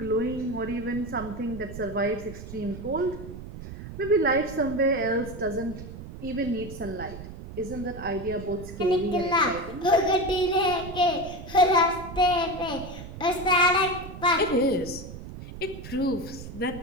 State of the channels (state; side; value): noise; right; rumble, 12 dB below the sound